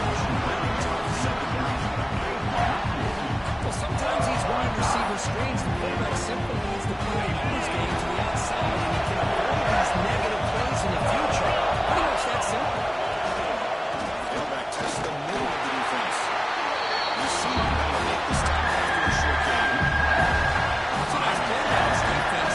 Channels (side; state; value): both; identical; correlation 1.00